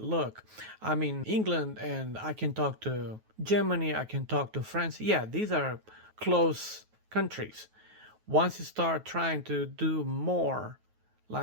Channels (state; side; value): late; left; 9.3 ms